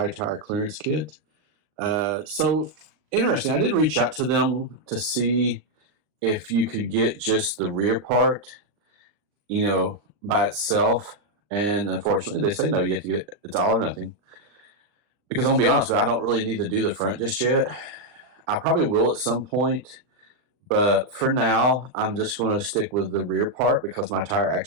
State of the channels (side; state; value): left; late; 39 ms